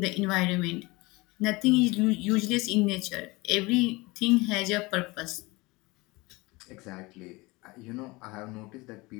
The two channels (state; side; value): quieter; right; 23.5 dB